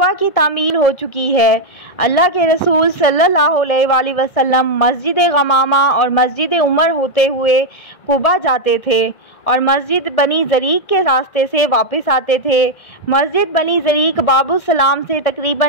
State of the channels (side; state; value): right; late; 1.7 ms